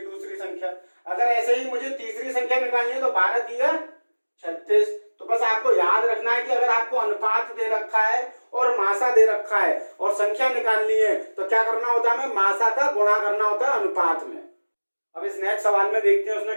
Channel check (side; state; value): both; inverted; correlation -1.00